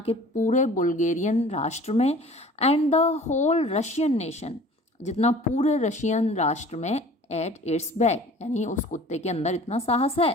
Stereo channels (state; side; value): normal; both; correlation 0.46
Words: पूरे बुल्गेरियन राष्ट्र में, and the whole Russian nation, जितना पूरे रशियन राष्ट्र में, एट इट्स बैक, यानी उस कुत्ते के अंदर इतना साहस है।